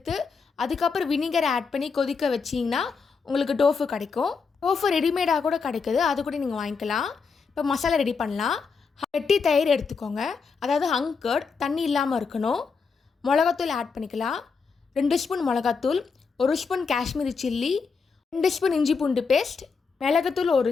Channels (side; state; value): right; quieter; 5.2 dB